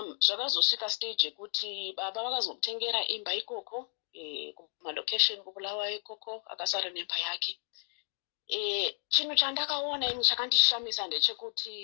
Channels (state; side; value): silent; right; 56 dB below the other